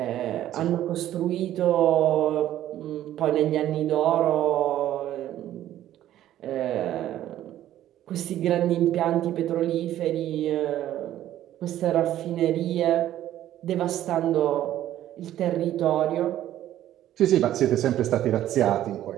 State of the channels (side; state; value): left; quieter; 12.6 dB